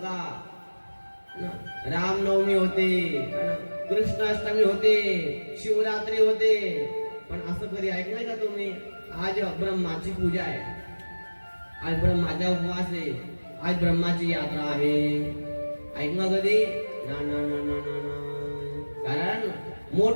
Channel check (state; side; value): inverted; both; correlation -1.00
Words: रामनवमी होते, कृष्णाष्टमी होते, शिवरात्री होते, पण असं कधी ऐकलंय का तुम्ही? आज ब्रह्माची पूजा आहे, आज ब्रह्माचा उपवास आहे, आज ब्रह्माची यात्रा आहे. ऐकलं कधी? ना ना ना ना ना. कारण